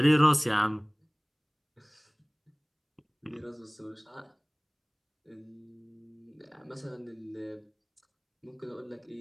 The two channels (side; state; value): both; identical; correlation 1.00